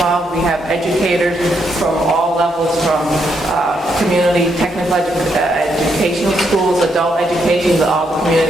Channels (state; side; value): normal; both; correlation 0.77